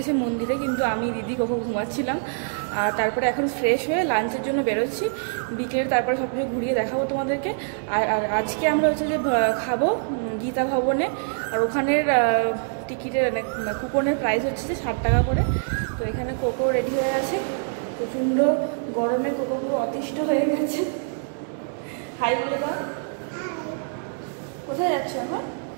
মন্দিরে, কিন্তু আমি দিদি কোথাও ঘুমাচ্ছিলাম। আর তারপরে এখন ফ্রেশ হয়ে লাঞ্চের জন্য বেরোচ্ছি বিকেলে, তারপরে সব কিছু ঘুরিয়ে দেখাবো তোমাদেরকে। আর আজকে আমরা হচ্ছে যে খাবো গীতা ভবনে। আর ওখানের টিকিটের কুপনের প্রাইস হচ্ছে যে 60 টাকা করে। তো এখানে কোকো রেডি হয়ে আছে, প্রচণ্ড গরমে কোকোগুলো অতিষ্ঠ হয়ে গেছে। হাই বলে দাও। কোথায় যাচ্ছ এখন?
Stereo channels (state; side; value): silent; left; digital silence